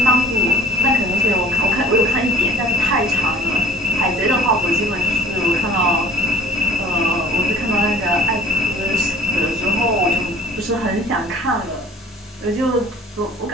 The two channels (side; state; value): both; normal; correlation 0.47